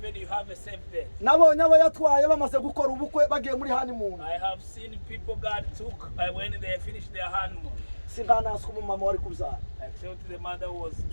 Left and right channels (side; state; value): both; inverted; correlation -1.00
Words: you have a safe date. Nabonye abayatwaye bamaze gukora ubukwe bagiye muri honeymoon. I have seen people God took when they finished their honeymoon. Singanaswa umumama wari kubyara. Except the mother who was